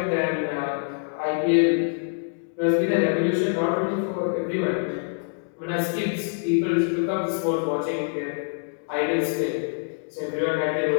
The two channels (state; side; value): silent; right; digital silence